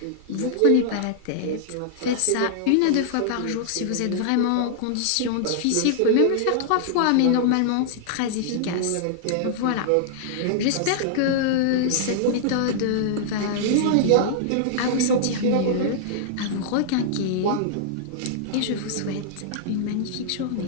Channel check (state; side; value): different; both; correlation -0.01